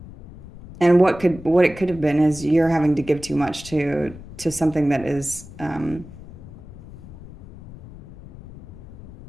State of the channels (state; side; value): noise; left; rumble, 17 dB below the sound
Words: And what it could have been is you're having to give too much to something that is